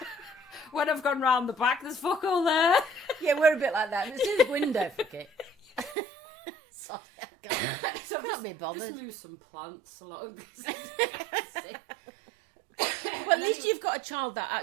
I've gone round the back, there's fuck all there. Yeah, we're a bit like that. There's his window, fuck it. Sorry, so I've just moved some plants along. Well, at least you've got a child that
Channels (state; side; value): drops out; left; at 6.0 s